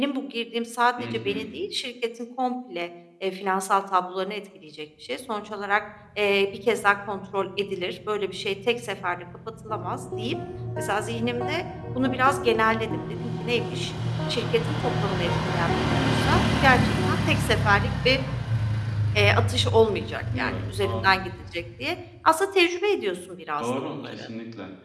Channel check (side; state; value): both; identical; correlation 1.00